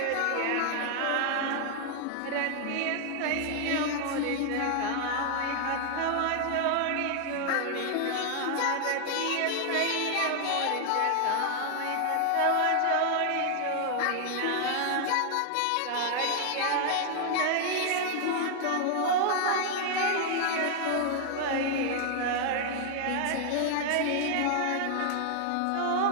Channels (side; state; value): both; different; correlation 0.00